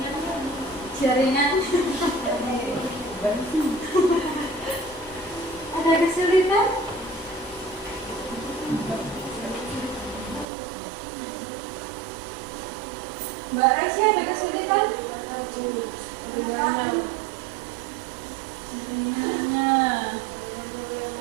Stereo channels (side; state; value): left; drops out; at 10.5 s